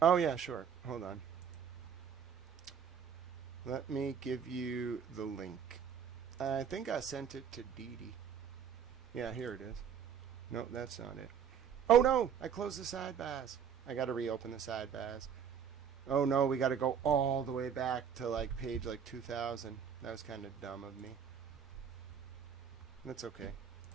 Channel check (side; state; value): left; quieter; 7.8 dB